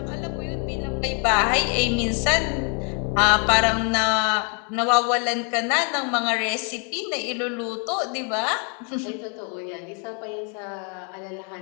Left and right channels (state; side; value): quieter; right; 38.6 dB